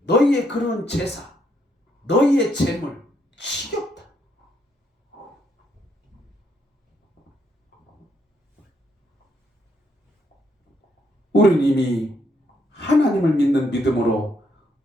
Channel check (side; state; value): both; normal; correlation 0.74